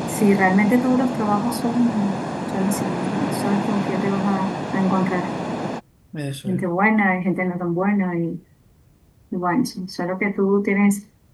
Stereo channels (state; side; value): identical; both; correlation 1.00